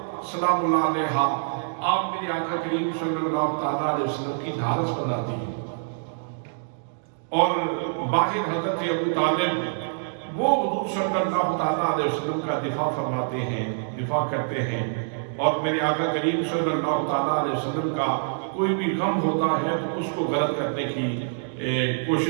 سلام اللہ علیہا آپ میرے آقا کریم صلی اللہ تعالیٰ علیہ وسلم کی ڈھارس بناتی ہیں، اور باہر حضرت ابو طالب وہ حضور صلی اللہ تعالیٰ علیہ وسلم کا دفاع فرماتے ہیں، دفاع کرتے ہیں، اور میرے آقا کریم صلی اللہ تعالیٰ علیہ وسلم کا کوئی بھی غم ہوتا ہے تو اس کو غلط کرنے کی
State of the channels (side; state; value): left; silent; digital silence